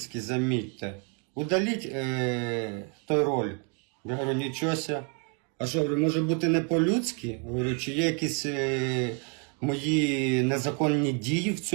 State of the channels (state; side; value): quieter; left; 38.3 dB